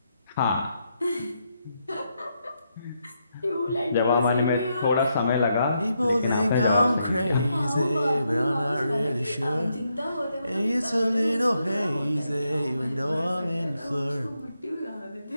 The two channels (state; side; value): inverted; both; correlation -0.81